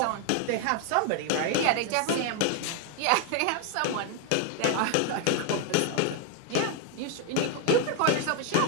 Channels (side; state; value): both; different; correlation 0.01